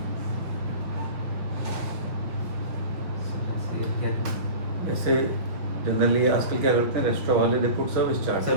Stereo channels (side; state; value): left; late; 5.6 ms